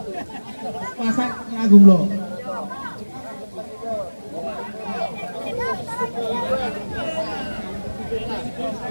Pasak agung lo.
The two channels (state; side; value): inverted; both; correlation -1.00